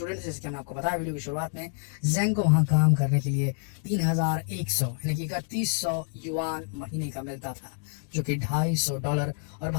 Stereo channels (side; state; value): right; silent; 59 dB below the other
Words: थे, जैसे हमने आपको बताया वीडियो की शुरुआत में, जेंग को वहां काम करने के लिए 3100 यानी कि 3100 युआन महीने का मिलता था, जो कि $250 और